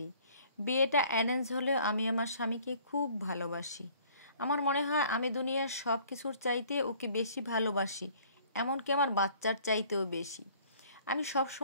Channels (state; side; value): inverted; both; correlation -0.55